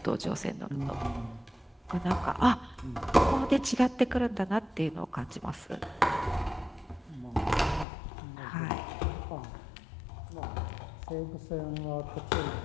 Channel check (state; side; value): drops out; right; at 7.9 s